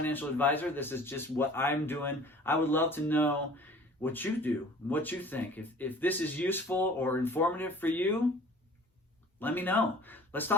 advisor. This is just what I'm doing. I would love to know what you do, what you think. If this is useful or informative for you, let me know. Let's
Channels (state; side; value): normal; both; correlation 0.48